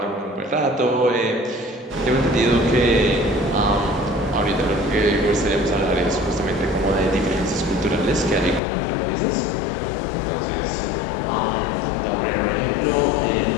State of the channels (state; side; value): drops out; right; at 8.6 s